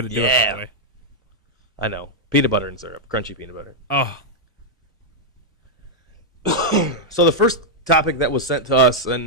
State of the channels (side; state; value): both; normal; correlation -0.03